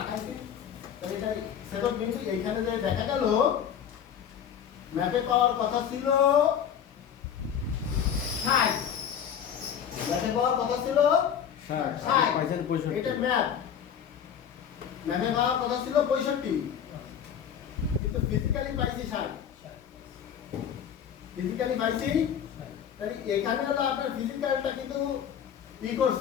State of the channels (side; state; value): right; quieter; 8.6 dB